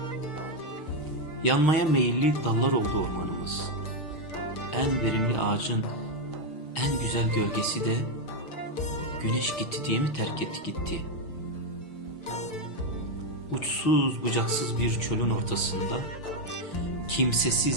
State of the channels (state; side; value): late; right; 6.2 ms